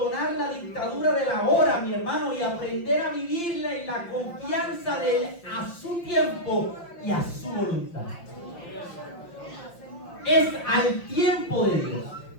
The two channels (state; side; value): late; right; 5.8 ms